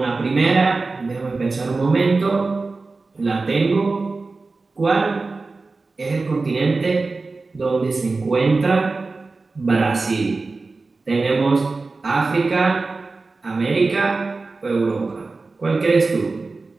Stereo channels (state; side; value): quieter; left; 3.8 dB